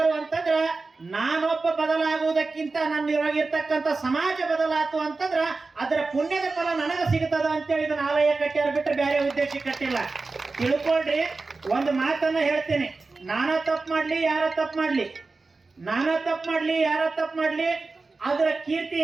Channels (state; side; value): quieter; left; 3.8 dB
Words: ಅಂತಂದ್ರ ನಾನೊಬ್ಬ ಬದಲಾಗುವುದಕ್ಕಿಂತ ನನ್ನಿರತಕ್ಕಂಥ ಸಮಾಜ ಬದಲಾತು ಅಂತಂದ್ರ ಅದರ ಪುಣ್ಯದ ಫಲ ನನಗ ಸಿಗುತ್ತದ ಅಂತೇಳಿ ಇದನ್ನ ಆಲಯ ಕಟ್ಟ್ಯಾರ ಬಿಟ್ಟರೆ ಬೇರೆ ಉದ್ದೇಶ ಕಟ್ಟಿಲ್ಲ. ತಿಳ್ಕೊಳ್ರಿ. ಒಂದು ಮಾತನ್ನ ಹೇಳ್ತೀನಿ: ನಾನಾ ತಪ್ಪು ಮಾಡ್ಲಿ, ಯಾರ ತಪ್ಪು ಮಾಡ್ಲಿ, ನಾನಾ ತಪ್ಪು ಮಾಡ್ಲಿ, ಯಾರ ತಪ್ಪು ಮಾಡ್ಲಿ, ಅದರ